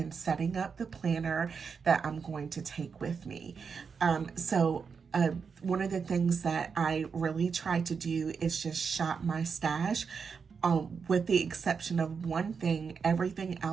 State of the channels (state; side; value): quieter; left; 5.8 dB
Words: setting up the planner that I'm going to take with me. One of the things that I really try to do is just shop my stash. With the exception of one thing, everything